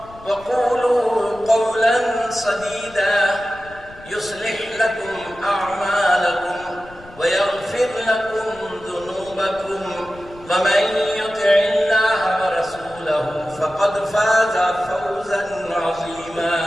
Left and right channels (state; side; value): noise; left; rumble, 21 dB below the sound